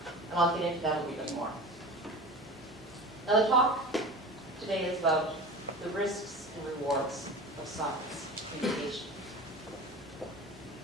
And I'll get into that a little bit more. Now the talk today is about the risks and rewards of science communication.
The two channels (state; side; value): normal; both; correlation 0.34